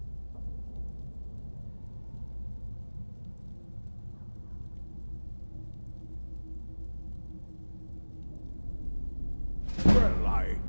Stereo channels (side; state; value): both; inverted; correlation -1.00